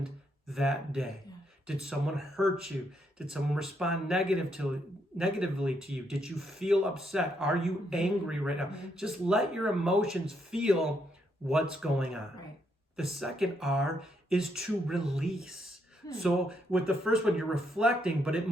that day. Did someone hurt you? Did someone respond negatively to you? Did you feel upset? Are you angry right now? Just let your emotions feel what's going on. The second R is to release. So with the first one, you're reflecting, but it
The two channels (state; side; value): normal; both; correlation 0.76